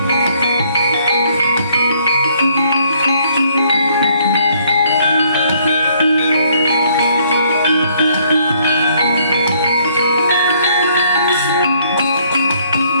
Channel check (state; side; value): inverted; both; correlation -0.66